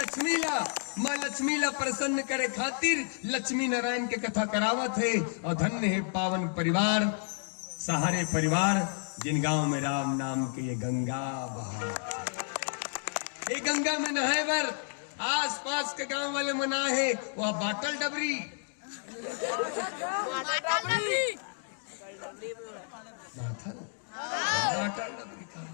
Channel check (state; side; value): silent; right; 57 dB below the other